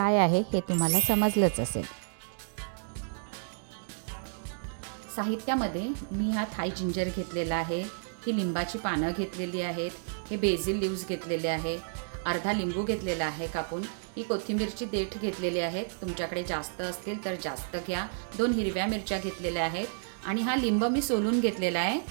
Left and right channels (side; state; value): left; silent; digital silence